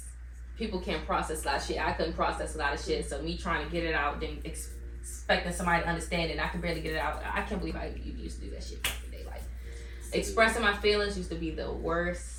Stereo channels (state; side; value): identical; both; correlation 1.00